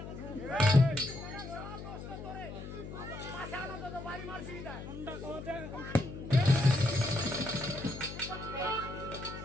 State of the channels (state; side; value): noise; left; hum, 10 dB below the sound